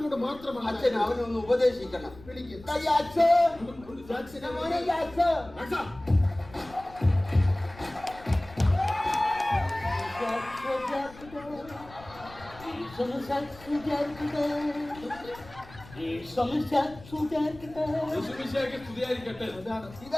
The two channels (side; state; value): left; noise; rumble, 20 dB below the sound